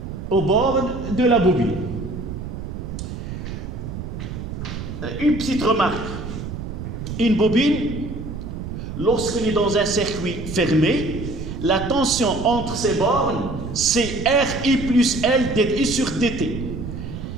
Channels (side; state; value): right; noise; rumble, 7 dB below the sound